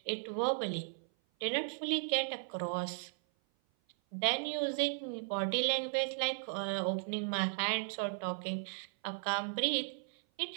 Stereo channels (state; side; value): silent; left; 54 dB below the other